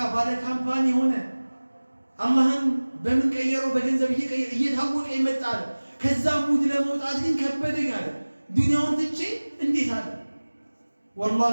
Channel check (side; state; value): both; inverted; correlation -1.00